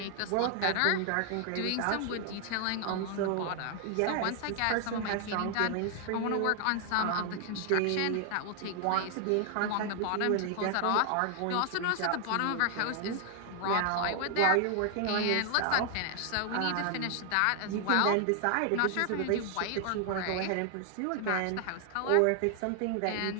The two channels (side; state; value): both; different; correlation 0.00